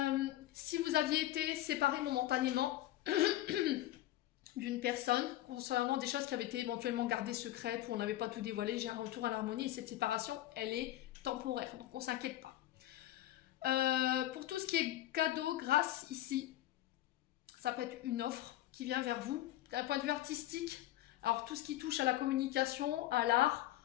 Si vous aviez été séparé momentanément d'une personne concernant des choses qui avaient été éventuellement gardées secrètes ou on n'avait pas tout dévoilé, j'ai un retour à l'harmonie et cette séparation, elle est temporaire, donc on ne s'inquiète pas. Pour tout ce qui est cadeau, grâce ici, ça peut être une offre qui vient vers vous d'un point de vue artistique. Alors tout ce qui touche à la communication, à l'art,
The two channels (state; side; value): quieter; right; 14.6 dB